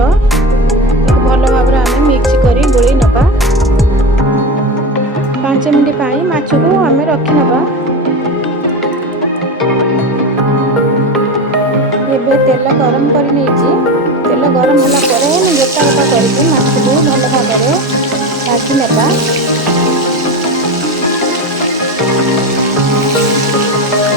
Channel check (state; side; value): normal; both; correlation 0.23